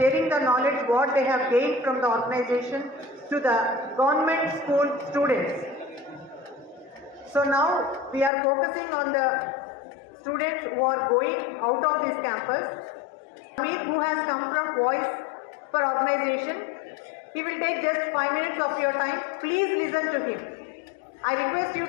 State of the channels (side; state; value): right; drops out; at 8.3 s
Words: the knowledge what they have gained from the organization to the government school students. So now we are focusing on the students who are going out of this campus. Amir, who has come from Voice for Organization, he will take just 5 minutes of your time. Please listen to him. I request you